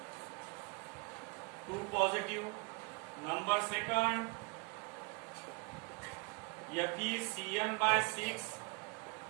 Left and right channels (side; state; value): left; quieter; 32.8 dB